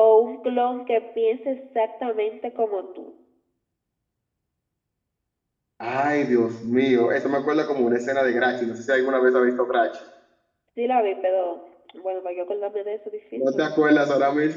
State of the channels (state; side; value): identical; both; correlation 1.00